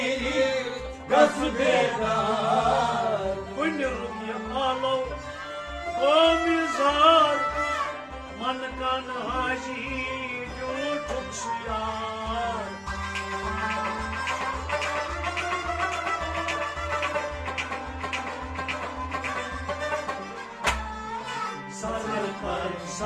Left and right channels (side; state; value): both; identical; correlation 1.00